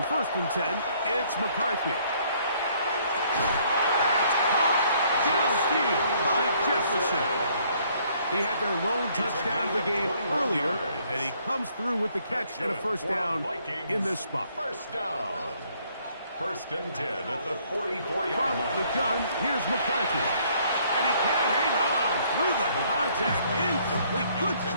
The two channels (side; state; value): both; inverted; correlation -0.64